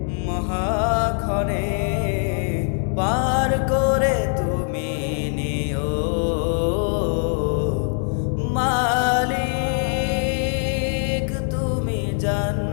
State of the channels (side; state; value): right; silent; 56 dB below the other